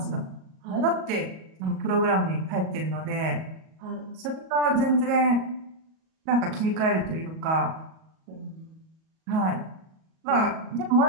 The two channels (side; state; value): left; late; 37 ms